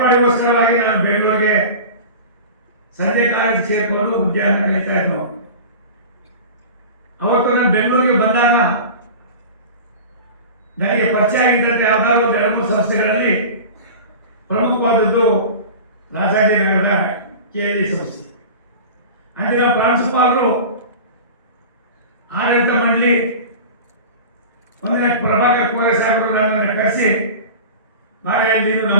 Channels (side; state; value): both; inverted; correlation -0.34